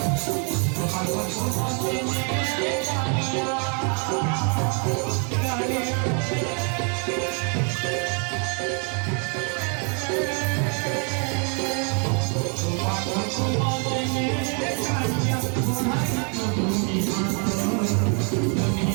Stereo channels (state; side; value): quieter; left; 38.5 dB